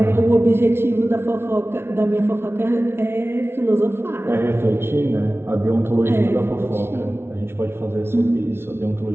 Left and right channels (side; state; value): left; late; 0.12 ms